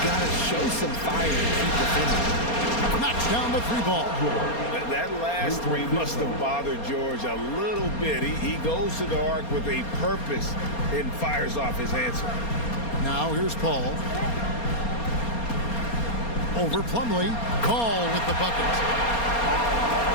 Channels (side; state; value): right; late; 4.3 ms